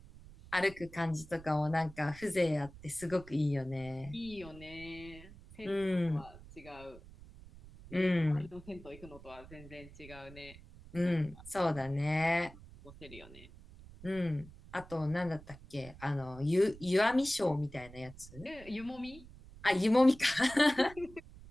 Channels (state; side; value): noise; right; rumble, 19 dB below the sound